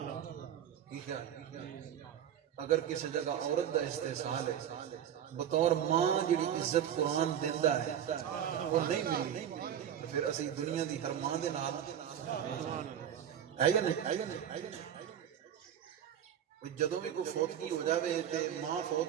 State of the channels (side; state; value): left; quieter; 9.7 dB